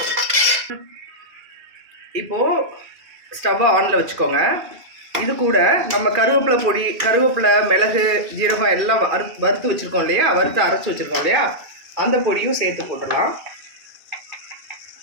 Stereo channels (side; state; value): left; late; 2.5 ms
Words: இப்போது ஸ்டவ்வை ஆனில் வச்சுக்கோங்க. இது கூட நம்ம கருவேப்பிலை பொடி, கருவேப்பிலை, மிளகு, ஜீரகம் எல்லாம் வறுத்து வச்சுருக்கோம் இல்லையா, வறுத்து அரைச்சி வச்சுருக்கோம் இல்லையா, அந்த பொடியும் சேர்த்து போட்டுடலாம்.